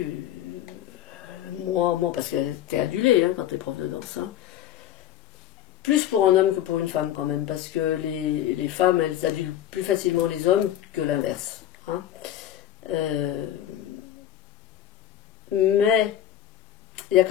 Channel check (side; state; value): right; quieter; 11.6 dB